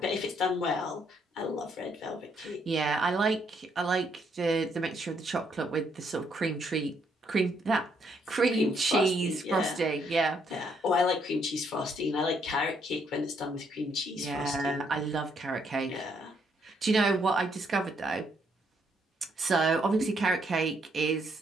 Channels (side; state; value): both; normal; correlation 0.72